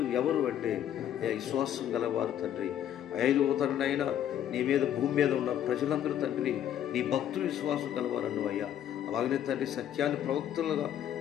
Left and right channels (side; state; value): right; quieter; 10.6 dB